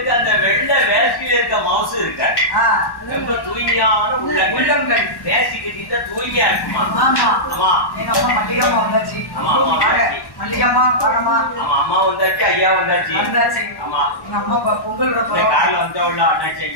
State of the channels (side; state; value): right; late; 1.1 ms